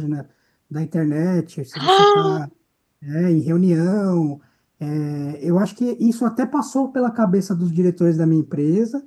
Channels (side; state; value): both; identical; correlation 1.00